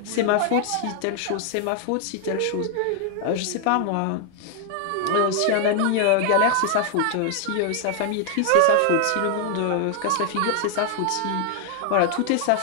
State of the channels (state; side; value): different; both; correlation 0.00